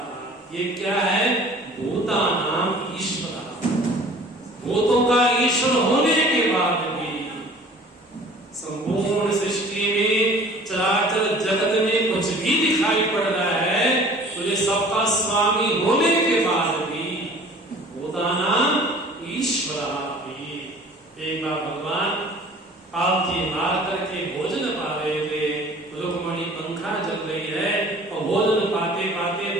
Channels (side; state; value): both; normal; correlation 0.48